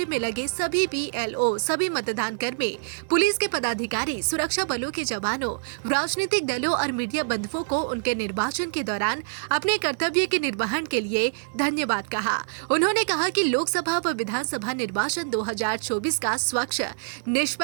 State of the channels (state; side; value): silent; left; digital silence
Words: में लगे सभी BLO, सभी मतदान कर्मी, पुलिस के पदाधिकारी, सुरक्षा बलों के जवानों, राजनीतिक दलों और मीडिया बंधुओं को उनके निर्वाचन के दौरान अपने कर्तव्य के निर्वहन के लिए धन्यवाद कहा। उन्होंने कहा कि लोकसभा व विधानसभा निर्वाचन 2024 का स्वच्छ,